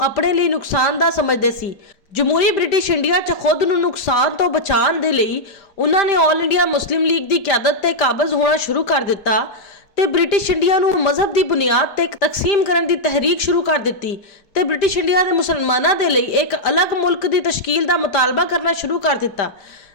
अपने लिए नुकसानदा समझते सी। जमहूरी ब्रिटिश इंडिया च खुद नूं नुकसान तो बचाने दे लई उन्होंने ऑल इंडिया मुस्लिम लीग की क्यादत ते काबज होना शुरू कर दिता ते ब्रिटिश इंडिया नूं मजहब की बुनियाद ते तकसीम करने की तहरीक शुरू कर दी ते ब्रिटिश इंडिया के मुसलमानों के लिए एक अलग मुल्क की तश्कील का मुतालबा करना शुरू कर दिता।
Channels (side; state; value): right; late; 5.0 ms